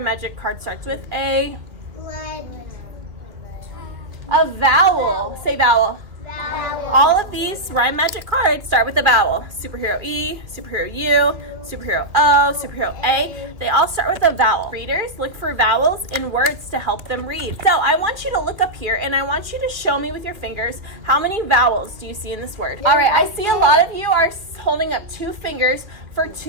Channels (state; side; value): late; left; 2.4 ms